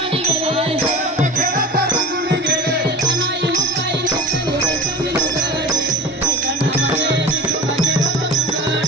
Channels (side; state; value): both; normal; correlation 0.34